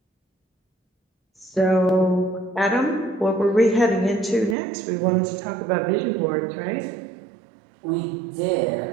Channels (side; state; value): left; drops out; at 4.5 s